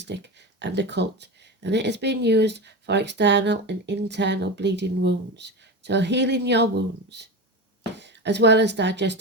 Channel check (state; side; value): normal; both; correlation 0.23